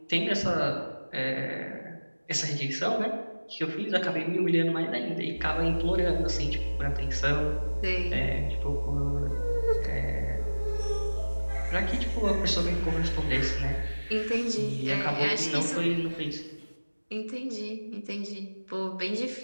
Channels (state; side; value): inverted; both; correlation -1.00